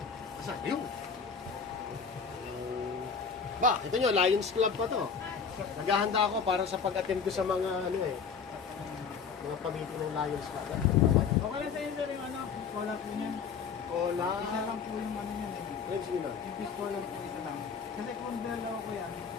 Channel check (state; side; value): quieter; right; 6.0 dB